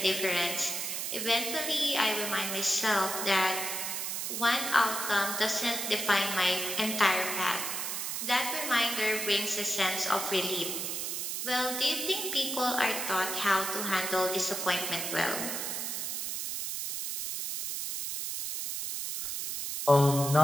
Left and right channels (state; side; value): noise; right; hiss, 3 dB below the sound